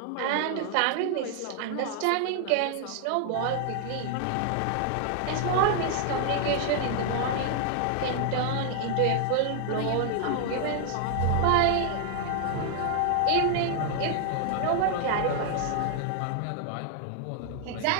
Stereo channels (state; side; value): different; both; correlation 0.00